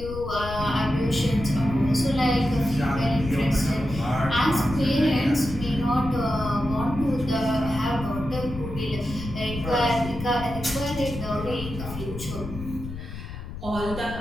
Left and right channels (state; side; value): noise; left; rumble, 9 dB below the sound